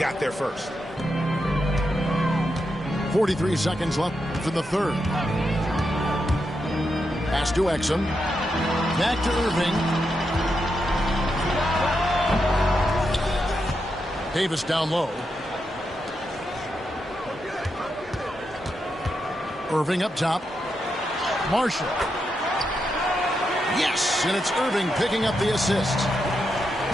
there first. 43 seconds left in the third. Pass to Exum. Back to Irving. Davis down low. Irving up top. Marshall. Yes, and it's Irving picking up the assist.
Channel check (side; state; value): both; normal; correlation 0.85